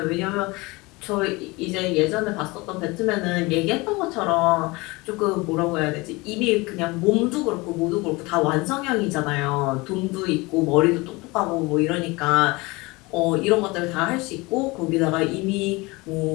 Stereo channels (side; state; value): right; quieter; 23.8 dB